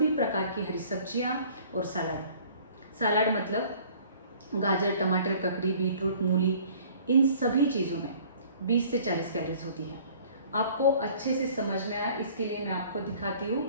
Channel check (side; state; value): both; inverted; correlation -0.52